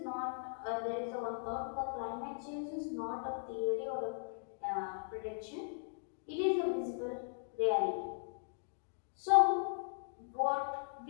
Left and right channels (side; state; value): right; silent; digital silence